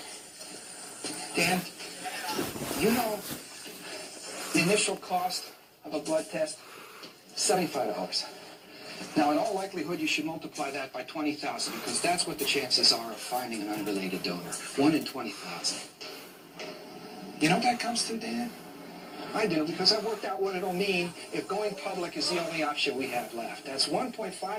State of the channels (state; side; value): identical; both; correlation 1.00